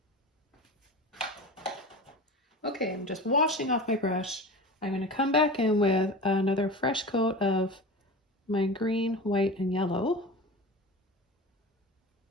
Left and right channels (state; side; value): normal; both; correlation 0.31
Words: Okay, I'm just washing off my brush. I'm going to come back in with another fresh coat of my green, white, and yellow.